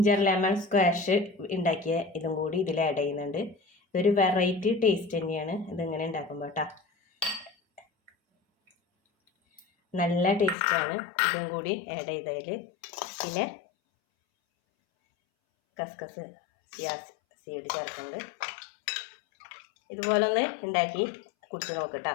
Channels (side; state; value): right; drops out; at 10.6 s